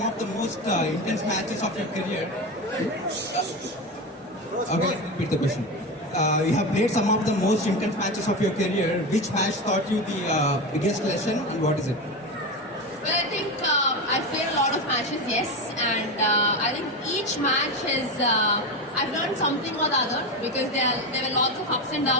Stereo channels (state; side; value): normal; both; correlation 0.19